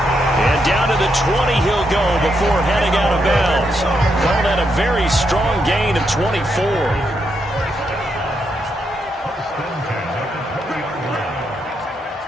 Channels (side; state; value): both; normal; correlation 0.80